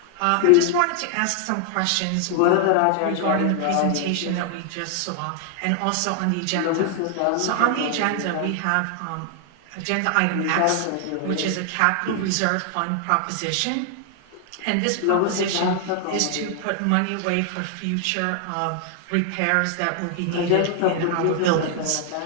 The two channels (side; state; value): both; different; correlation 0.00